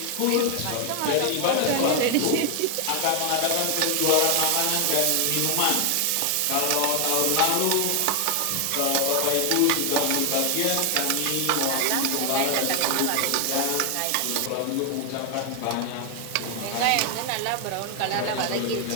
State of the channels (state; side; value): different; both; correlation 0.00